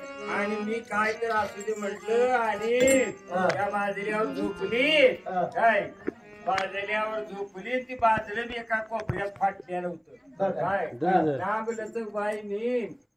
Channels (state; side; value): identical; both; correlation 1.00